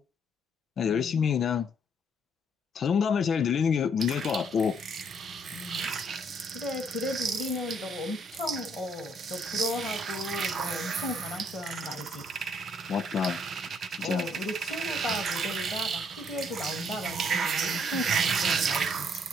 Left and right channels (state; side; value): normal; both; correlation 0.67